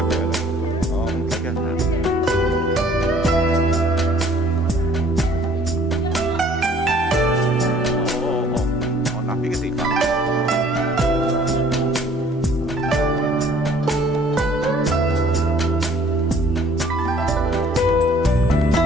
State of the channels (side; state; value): both; normal; correlation 0.57